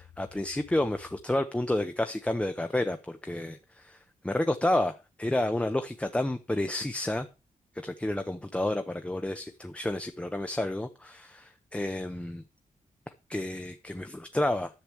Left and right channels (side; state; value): both; normal; correlation 0.91